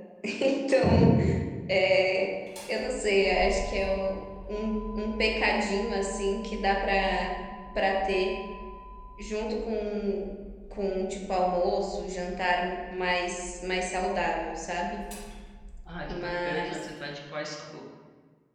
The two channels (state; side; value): identical; both; correlation 1.00